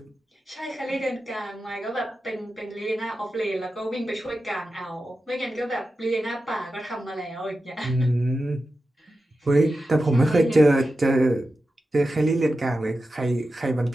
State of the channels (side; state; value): both; normal; correlation 0.92